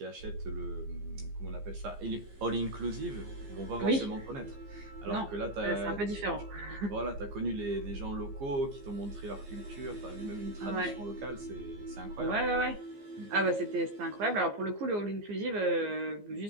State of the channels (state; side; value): late; left; 15 ms